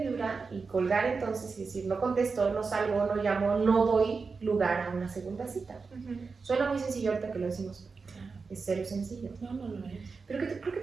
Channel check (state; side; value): quieter; left; 4.7 dB